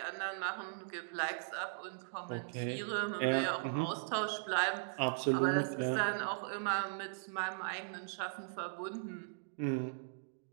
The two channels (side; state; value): left; silent; digital silence